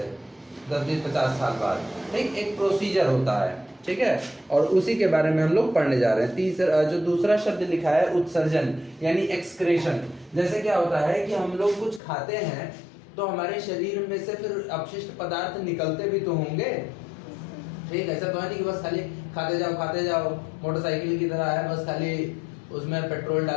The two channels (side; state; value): right; drops out; at 12.0 s